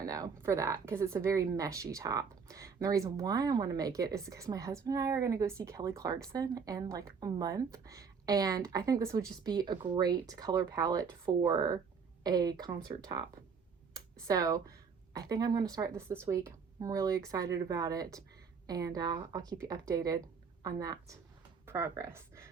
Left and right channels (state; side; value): quieter; left; 5.8 dB